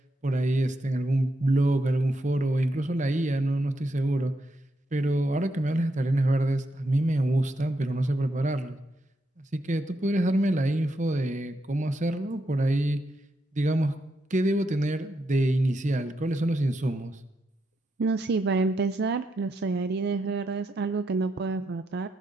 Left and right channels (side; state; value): both; normal; correlation 0.82